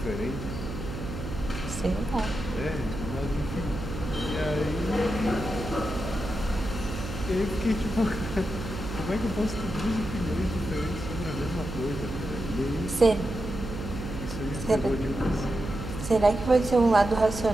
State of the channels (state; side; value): noise; right; hum, 7 dB below the sound